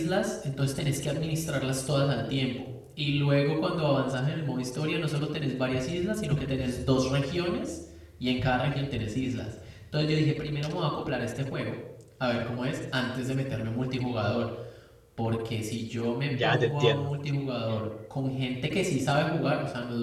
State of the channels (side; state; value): both; identical; correlation 1.00